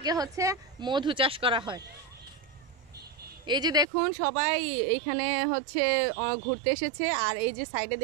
হচ্ছে মধু চাষ করা হয়। এই যে দেখুন সবাই এইখানে হচ্ছে ঘুরতে এসেছে, আর এই যে সাইডে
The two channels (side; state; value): left; drops out; at 3.9 s